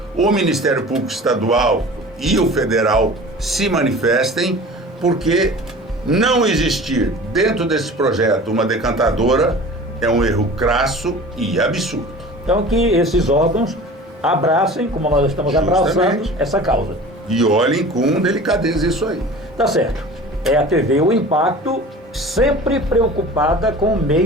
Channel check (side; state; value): both; normal; correlation 0.40